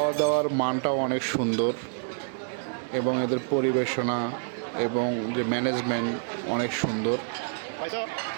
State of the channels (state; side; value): silent; left; digital silence